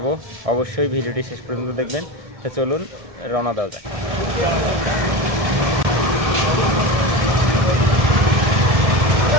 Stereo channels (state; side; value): late; left; 1.7 ms